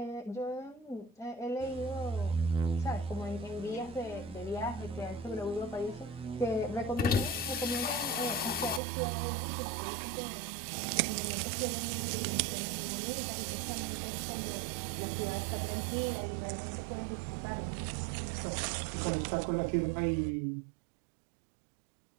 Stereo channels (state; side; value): drops out; left; at 8.8 s